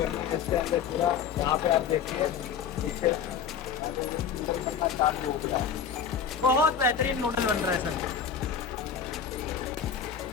है। इसके अंदर पूरा यहाँ पे आप देखिए पीछे बनना चालू हो गया। बहुत बेहतरीन नूडल बन रहा है सर।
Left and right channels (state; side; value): quieter; right; 7.3 dB